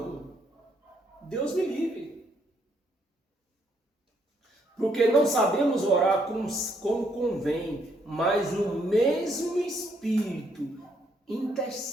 Deus me livre. Porque não sabemos orar como convém, mas o mesmo Espírito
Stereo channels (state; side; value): normal; both; correlation 0.72